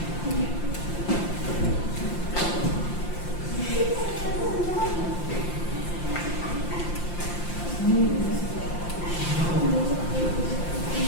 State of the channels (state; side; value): late; right; 5.8 ms